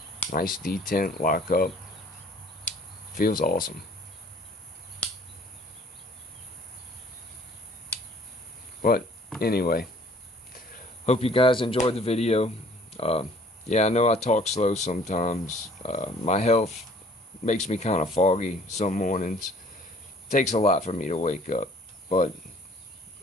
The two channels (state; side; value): normal; both; correlation 0.55